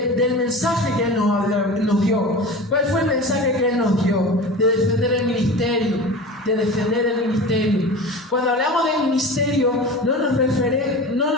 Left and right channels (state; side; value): normal; both; correlation 0.32